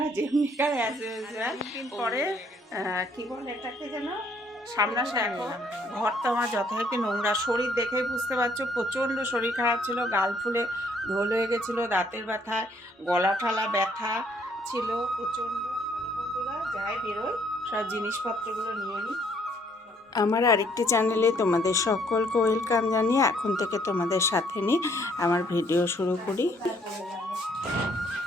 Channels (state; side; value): normal; both; correlation 0.65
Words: যেমনিকার as usual পরে কি বলে এটাকে যেন সামনাসামনি দেখো। ঘর তো আমার যথারীতি নোংরা, শরীর দেখেই বুঝতে পারছো প্রচণ্ড শরীর খারাপ ছিল, গাল ফুলে ঢোল হয়ে গেছিলো, দাঁতের ব্যথায় গলা ঠালা ব্যথা ছিল প্রচণ্ড। বন্ধুরা যাই বেরোয় সব জিনিসপত্রগুলো নিয়ে নিই। আমার আরেকটি চ্যানেলে তোমাদের সকলকে ওয়েলকাম জানিয়ে এখন থেকে তোমাদের সাথে নিয়ে আমার ভিডিও শুরু করি।